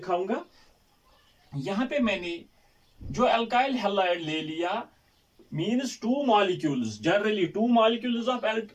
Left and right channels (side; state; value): both; identical; correlation 1.00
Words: यहाँ पे मैंने जो अल्काइल हैलाइड ले लिया, means two molecules, generally two molecules of